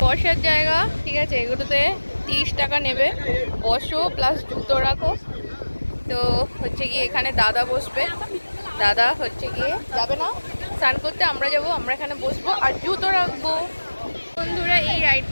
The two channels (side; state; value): both; inverted; correlation -1.00